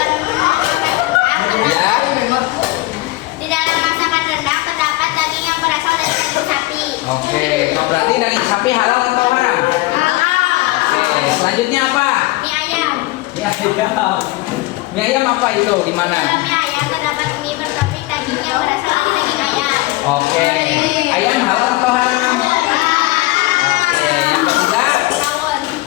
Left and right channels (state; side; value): quieter; right; 19.6 dB